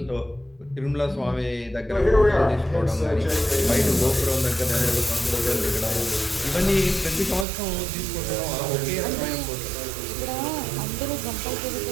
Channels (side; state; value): left; drops out; at 7.5 s